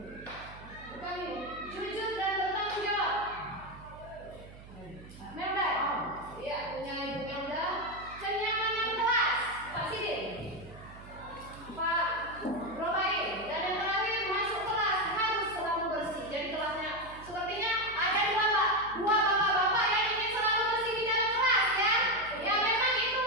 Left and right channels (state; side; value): noise; right; hum, 18 dB below the sound